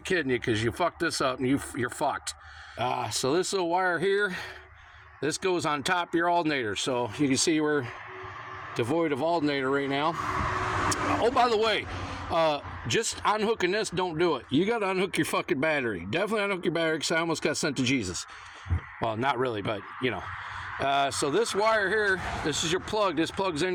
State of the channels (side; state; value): both; identical; correlation 1.00